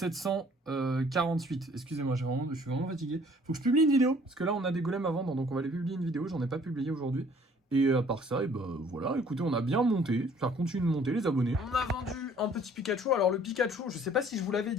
Excusez-moi, je suis vraiment fatigué. Faut que je publie une vidéo, parce que là, on a des golems à vendre, donc on va les publier une vidéo. J'en ai pas publié aujourd'hui. Et à part ça, voilà, écoutez, on a bien monté. Ça continue de monter, les abonnés. On a vendu un petit Pikachu. Alors, le Pikachu, je sais pas si je vous l'avais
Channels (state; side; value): normal; both; correlation 0.57